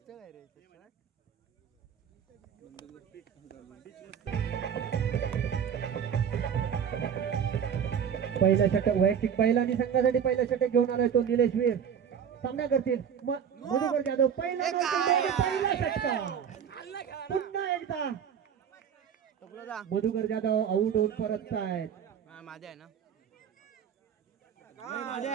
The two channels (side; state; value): left; quieter; 8.0 dB